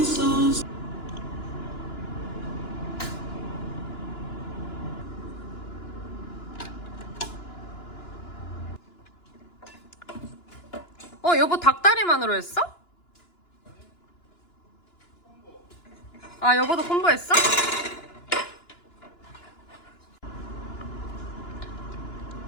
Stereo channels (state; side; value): late; right; 2.9 ms